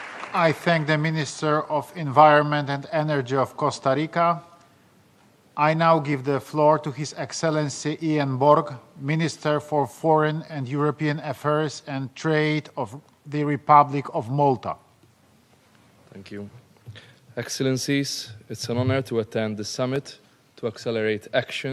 I thank the Minister of Environment and Energy of Costa Rica. I now give the floor to His Excellency Ian Borg, Minister for Foreign and European Affairs and Trade of the Republic of Malta. Thank you. Excellencies, it's an honor to attend the summit to accelerate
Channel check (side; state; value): both; identical; correlation 1.00